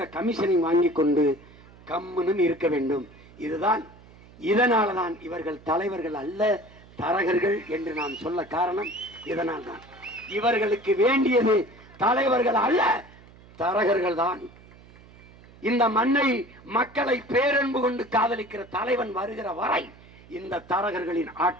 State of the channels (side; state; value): right; noise; hum, 23 dB below the sound